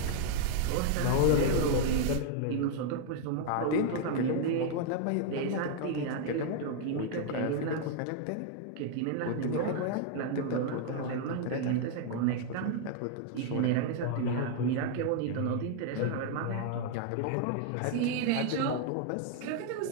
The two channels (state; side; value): different; both; correlation 0.00